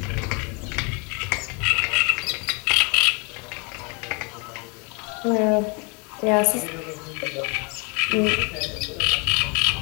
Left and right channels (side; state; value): right; quieter; 32.6 dB